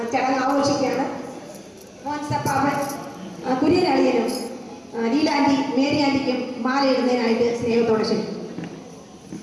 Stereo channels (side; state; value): both; identical; correlation 1.00